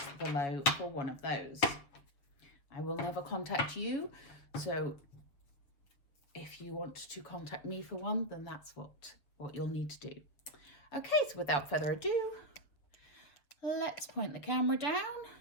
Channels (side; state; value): right; late; 6.9 ms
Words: below for one of those. I will never contact you, so if you want to contact me for one, then that's what you'll need to do. Okay, so without further ado, let's point the camera down